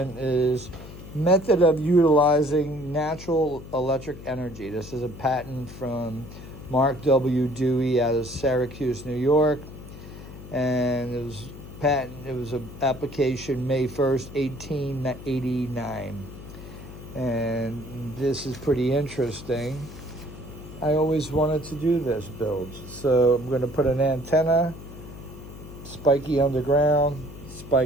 is method of utilizing natural electric energy. This is a patent from Mark W. Dewey out of Syracuse, New York. And it was an application May 1st, 1889. And this is pretty interesting. I always wanted to do this build. So I'm going to put an antenna, spiky underground,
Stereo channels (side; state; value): left; noise; hum, 14 dB below the sound